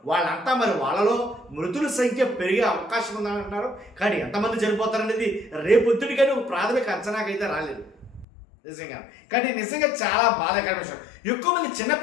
వాళ్ళంతా మరి వాళ్ళలో మృతుల సంఖ్య పెరిగే అవకాశం ఉందంటున్నారు. కానీ ఎంతమంది చనిపోతారనేది రేపొద్దుడికని ఒక ప్రాథమిక అంచనాకైతే రాలేదు నిజంగా. కానీ నిజంగా చాలా బాధాకరమైన విషయం. ఎక్కువ మంది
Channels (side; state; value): right; drops out; at 8.2 s